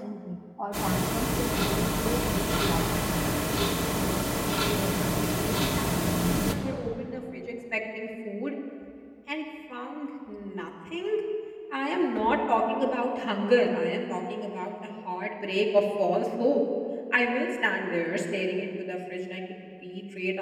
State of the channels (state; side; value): identical; both; correlation 1.00